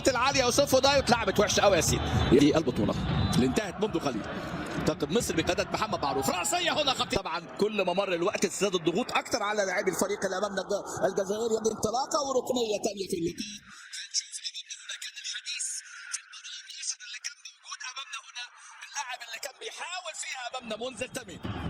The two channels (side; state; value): both; identical; correlation 1.00